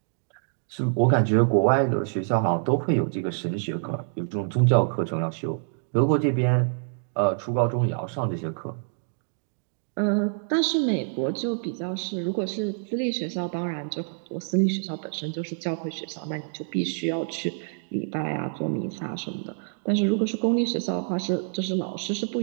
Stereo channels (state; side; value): silent; left; digital silence